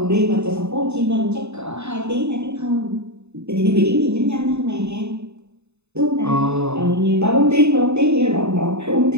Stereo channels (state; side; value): late; left; 0.81 ms